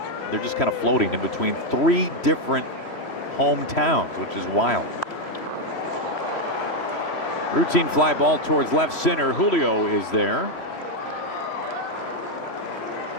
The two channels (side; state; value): right; late; 3.1 ms